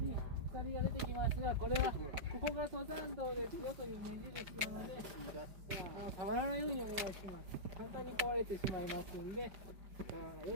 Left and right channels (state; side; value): late; left; 5.0 ms